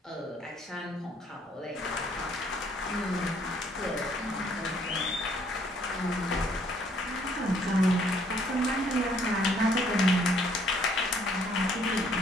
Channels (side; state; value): both; normal; correlation 0.64